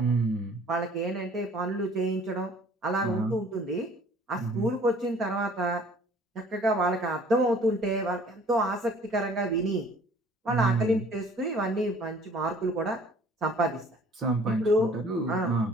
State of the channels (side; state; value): both; normal; correlation 0.53